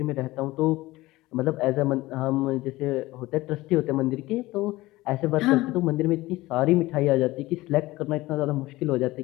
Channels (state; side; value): quieter; right; 18.9 dB